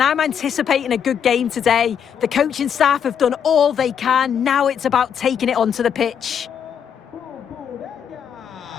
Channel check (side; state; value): right; quieter; 8.0 dB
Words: anticipating a good game today. The coaching staff have done all they can. Now it's about taking it onto the pitch. Con